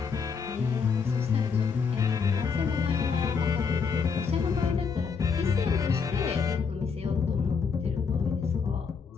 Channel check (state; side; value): quieter; right; 5.7 dB